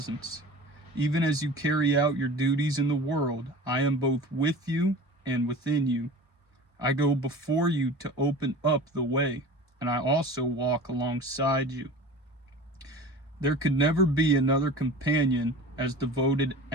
Even as you carry out your duties in the world, I am both with you and within you. I go before you to open up the way, and I also walk alongside you. There could never be another companion as devoted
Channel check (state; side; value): normal; both; correlation 0.38